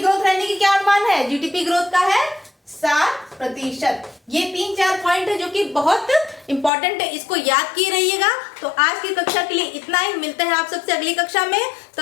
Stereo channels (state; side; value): drops out; right; at 6.7 s